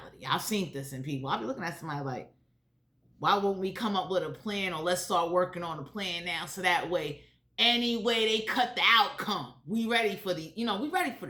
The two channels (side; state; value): both; identical; correlation 1.00